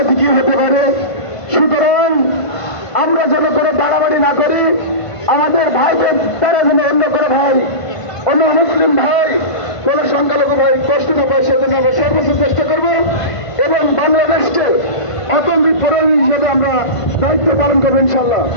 কি হতে পারে। সুতরাং আমরা যেন করে বাড়াবাড়ি না করি, আমাদের ভাইদের তারা যেন অন্য করে ভাই, অন্য মুসলিম ভাই, কোন সংখ্যালঘু ভাই কষ্ট না পায় সেজন্য আমরা সর্বোচ্চ চেষ্টা করব এবং বাংলাদেশকে অতন্ত্রিত প্রহরী হিসেবে আমরা দায়িত্ব পালন করবো ইনশাল্লাহ।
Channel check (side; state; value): right; late; 1.5 ms